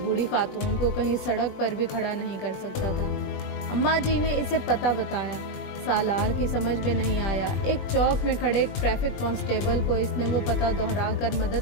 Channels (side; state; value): right; late; 20 ms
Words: بوڑھی خاتون کو کہیں سڑک پر بھی کھڑا نہیں کر سکتا تھا۔ اماں جی نے اسے پتہ بتایا۔ سالار کی سمجھ میں نہیں آیا۔ ایک چوک میں کھڑے ٹریفک کانسٹیبل کو اس نے وہ پتہ دہرا کر